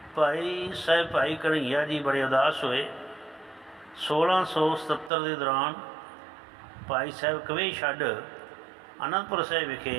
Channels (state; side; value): drops out; left; at 5.1 s